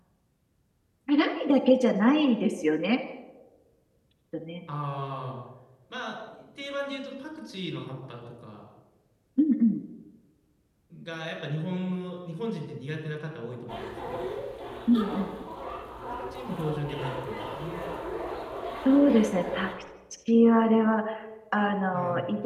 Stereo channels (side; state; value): both; identical; correlation 1.00